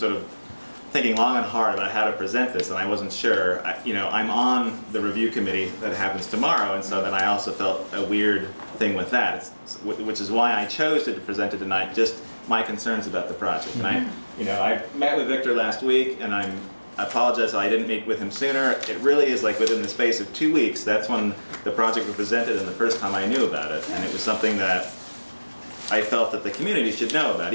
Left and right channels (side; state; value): both; inverted; correlation -1.00